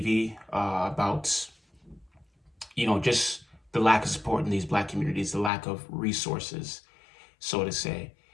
about, just the lack of support in these Black communities, the lack of resources, so to say.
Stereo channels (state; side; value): drops out; right; at 5.5 s